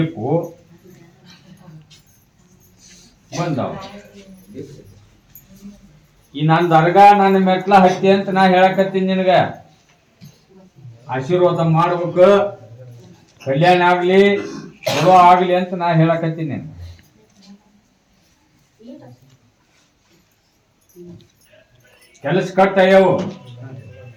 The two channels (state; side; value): identical; both; correlation 1.00